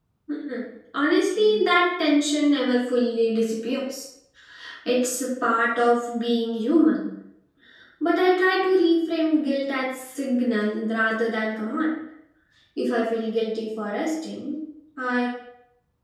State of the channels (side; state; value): both; identical; correlation 1.00